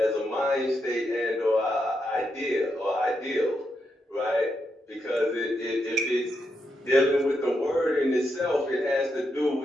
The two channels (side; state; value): both; normal; correlation 0.83